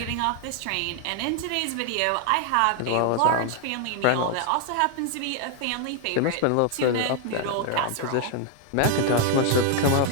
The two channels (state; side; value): different; both; correlation 0.00